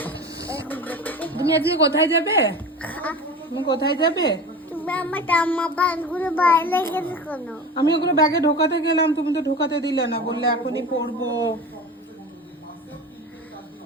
তুমি আজকে কোথায় যাবে? তুমি কোথায় যাবে? তুমি আমার জামা প্যান্টগুলো বাইরে গেছে কেন? আমি ওগুলো ব্যাগে ঢোকাতে গেলাম, তুমি তো ঢোকাতে দিলে না, বললে এখনই পরবো।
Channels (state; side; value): normal; both; correlation 0.33